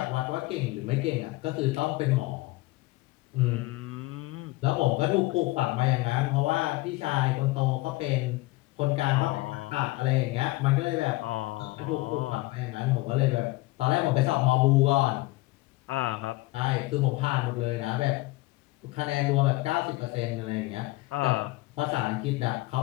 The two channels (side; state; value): right; quieter; 20.5 dB